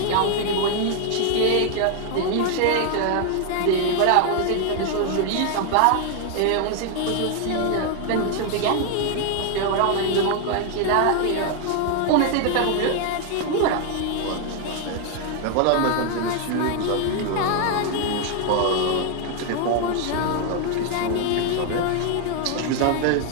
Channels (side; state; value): both; different; correlation 0.00